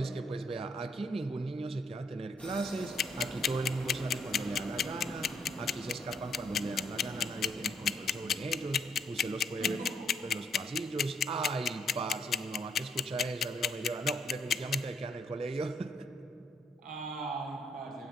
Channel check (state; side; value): normal; both; correlation 0.71